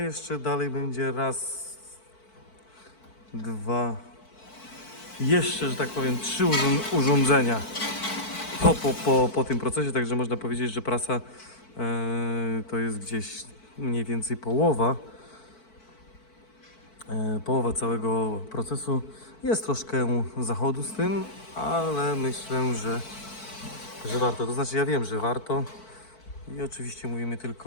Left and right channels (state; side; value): late; right; 4.5 ms